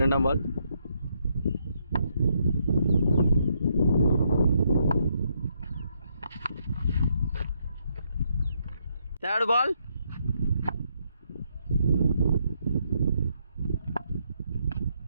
ரெண்டாம் ball third ball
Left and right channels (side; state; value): both; inverted; correlation -0.75